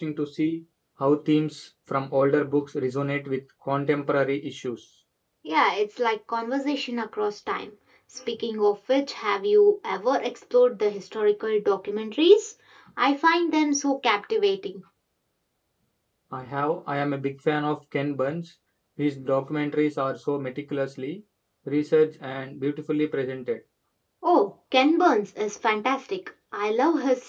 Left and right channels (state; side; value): identical; both; correlation 1.00